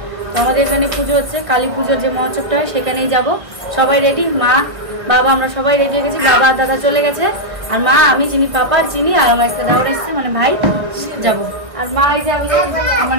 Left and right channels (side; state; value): left; late; 1.4 ms